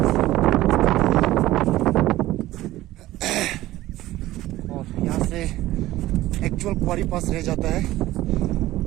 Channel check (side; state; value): left; quieter; 16.0 dB